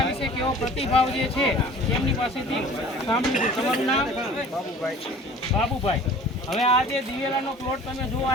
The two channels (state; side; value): normal; both; correlation 0.46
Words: વિશે કેવો પ્રતિભાવ જે છે એમની પાસેથી સાંભળ્યું। તમારું નામ? બાબુભાઈ। હવે આ જે દિવેલાનો પ્લોટ તમે જોવા